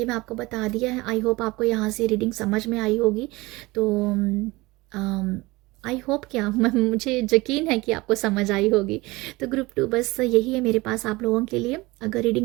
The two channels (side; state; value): left; quieter; 21.9 dB